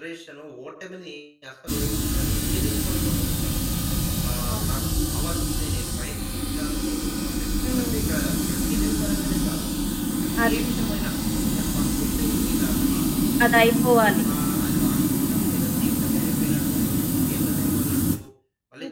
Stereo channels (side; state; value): both; identical; correlation 1.00